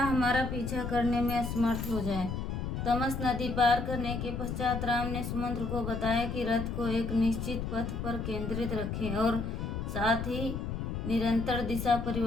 पीछा करने में असमर्थ हो जाए। तमस नदी पार करने के पश्चात राम ने सुमंत्र को बताया कि रथ को एक निश्चित पथ पर केंद्रित रखें और साथ ही निरंतर दिशा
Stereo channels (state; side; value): noise; left; rumble, 4 dB below the sound